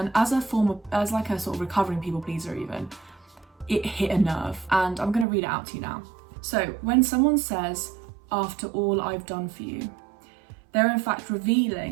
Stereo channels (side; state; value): left; drops out; at 5.2 s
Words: as like a sort of recovering people pleaser even, it hit a nerve, and I'm going to read it out to you now. So, when someone says, "After all I've done for you," they're in fact